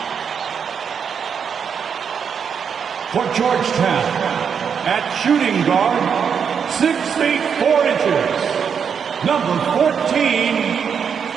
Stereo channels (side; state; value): left; quieter; 7.0 dB